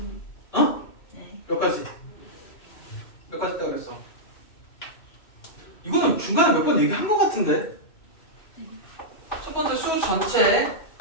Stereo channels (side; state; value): right; late; 2.6 ms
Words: 어? 네. 몇 가지? 몇 가지 있다고 그랬어? 이거는 중간에 몇 번 얘기한 것 같은데? 첫 번째 수 전체,